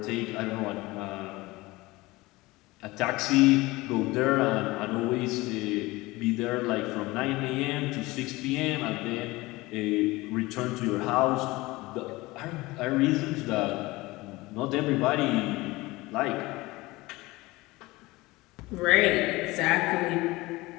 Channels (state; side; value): quieter; right; 20.9 dB